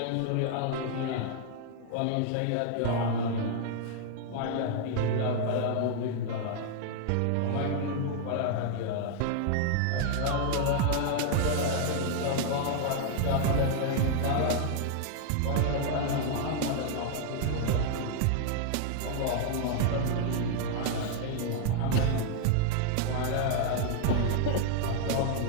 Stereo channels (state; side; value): different; both; correlation 0.00